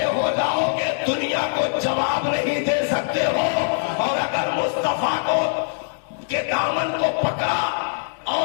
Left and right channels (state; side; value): silent; right; digital silence